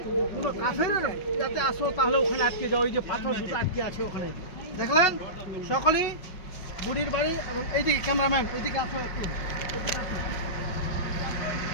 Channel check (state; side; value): late; right; 5.5 ms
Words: কোনো কাফেরের যাতে আসো তাহলে ওখানে আটকে যাও। ওই যে পাথর দুটো আটকে আছে ওখানে দেখলেন। সকলেই বুড়ির বাড়ি। এবং এইদিকে ক্যামেরাম্যান এইদিকে আসো একটু, এদিকে আসো।